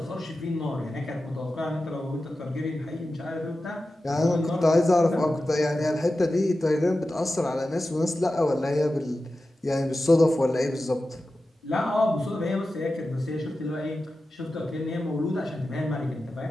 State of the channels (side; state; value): both; normal; correlation 0.93